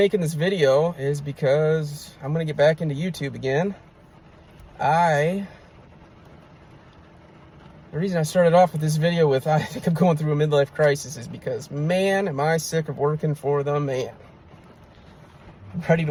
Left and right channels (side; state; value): both; identical; correlation 1.00